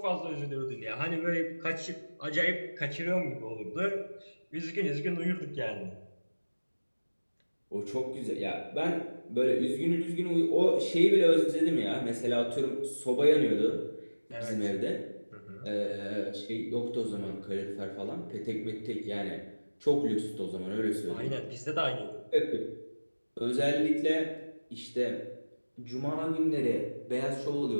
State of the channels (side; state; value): both; inverted; correlation -1.00